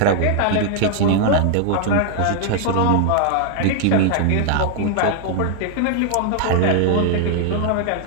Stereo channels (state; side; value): different; both; correlation 0.00